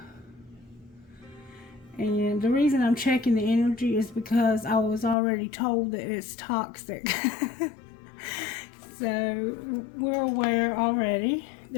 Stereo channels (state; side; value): drops out; right; at 5.2 s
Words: and the reason I'm checking the energy is because I was already told that it's toxic. So we're aware already.